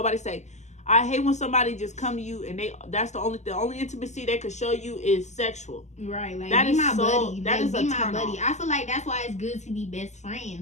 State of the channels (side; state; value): right; late; 0.34 ms